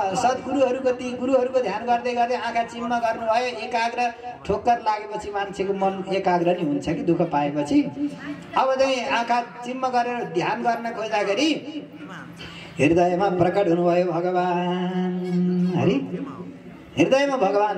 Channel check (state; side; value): identical; both; correlation 1.00